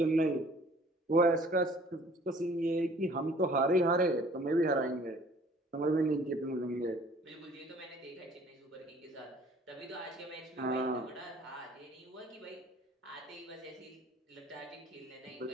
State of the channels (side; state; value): both; normal; correlation 0.54